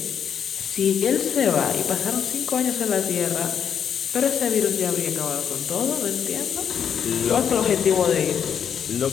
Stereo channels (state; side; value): quieter; right; 8.0 dB